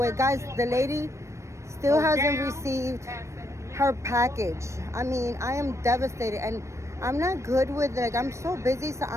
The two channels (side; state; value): left; late; 0.14 ms